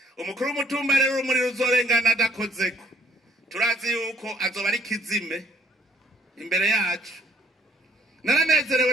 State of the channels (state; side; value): normal; both; correlation 0.64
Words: Umukuru w'umutumba rero urumuri ruzorengana adakozeko turazi yuko azoba ari kizime imbere yacu. Naranezerewe